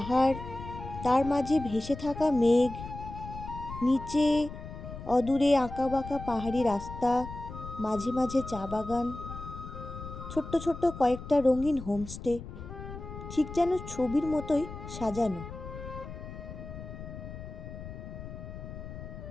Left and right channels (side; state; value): left; noise; rumble, 11 dB below the sound